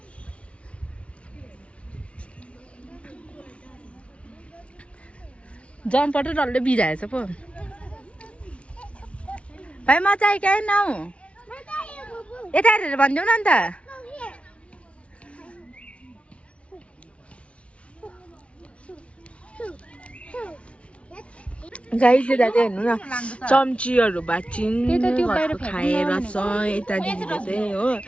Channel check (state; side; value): late; right; 0.061 ms